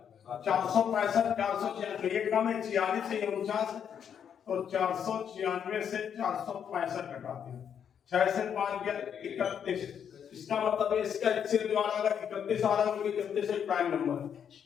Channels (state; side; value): quieter; right; 8.2 dB